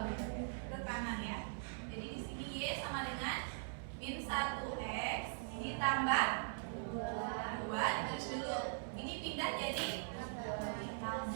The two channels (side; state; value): left; silent; 50 dB below the other